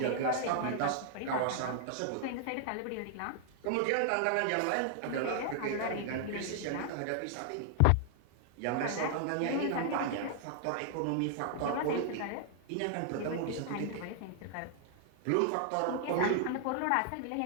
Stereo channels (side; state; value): both; different; correlation 0.00